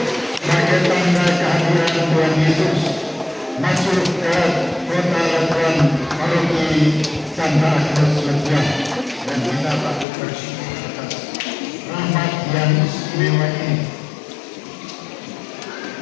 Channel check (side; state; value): right; drops out; at 10.1 s